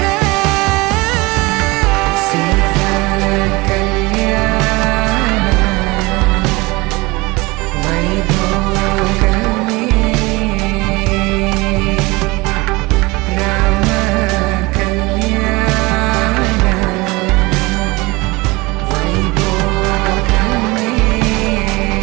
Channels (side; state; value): left; quieter; 23.5 dB